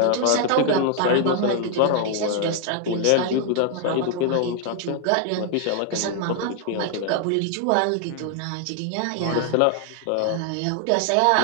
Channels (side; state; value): both; different; correlation 0.00